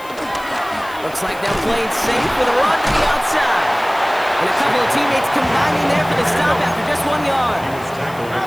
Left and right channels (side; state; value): left; noise; hiss, 21 dB below the sound